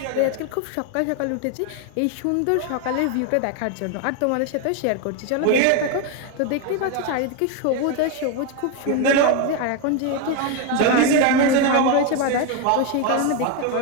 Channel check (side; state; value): both; different; correlation 0.01